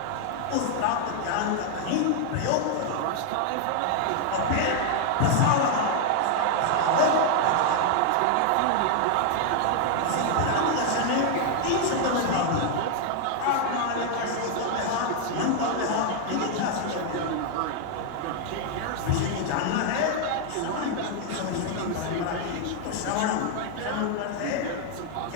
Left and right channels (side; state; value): both; different; correlation 0.00